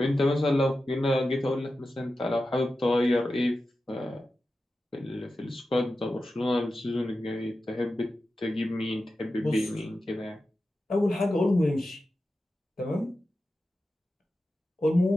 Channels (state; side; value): normal; both; correlation 0.92